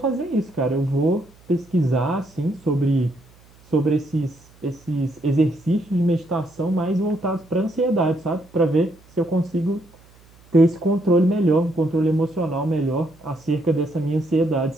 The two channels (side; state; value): right; noise; hum, 28 dB below the sound